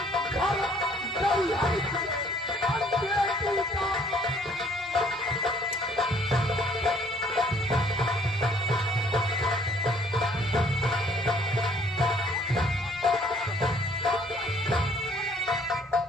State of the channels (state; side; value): normal; both; correlation 0.60